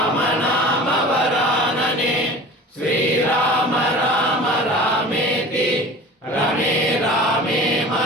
नाम वरानने श्रीराम राम रामेति रमे रामे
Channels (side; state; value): both; normal; correlation 0.39